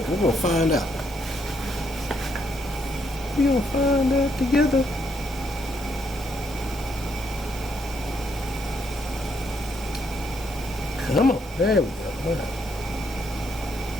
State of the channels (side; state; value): both; normal; correlation 0.74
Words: we're going to find out. We're going to find out together. Come on, there we go. Wow.